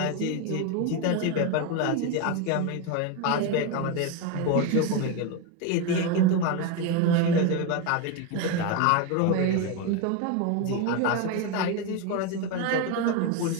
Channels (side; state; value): both; different; correlation 0.03